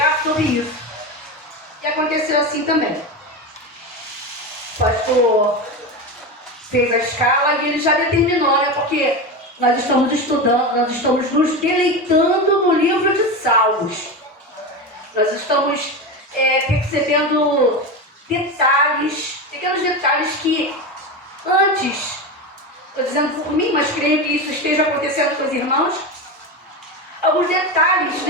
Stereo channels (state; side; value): normal; both; correlation 0.20